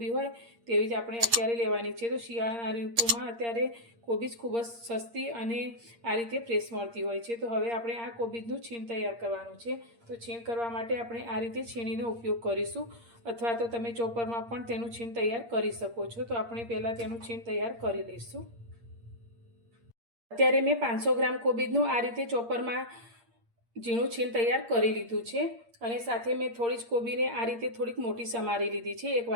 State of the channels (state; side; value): late; left; 8.6 ms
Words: હોય તેવી જ આપણે અત્યારે લેવાની છે। તો શિયાળાના ઋતુમાં અત્યારે કોબીજ ખૂબ જ સસ્તી અને આ રીતે ફ્રેશ મળતી હોય છે। તો હવે આપણે આ કોબીજનું છીણ તૈયાર કરવાનું છે। તો છીણ કરવા માટે આપણે આ રીતે છીણીનો ઉપયોગ કરીશું, અથવા તો તમે ચોપરમાં પણ તેનું છીણ તૈયાર કરી શકો છો। તો આપણે પહેલાં તેનું છીણ તૈયાર કરી લઈશું। અત્યારે મેં 500 ગ્રામ કોબીજનું આ રીતે ચોપરમાં ઝીણું છીણ તૈયાર કરી લીધું છે, અને સાથે મેં થોડી જ કોબીને આ રીતે થોડીક મોટી સમારી લીધી છે, 1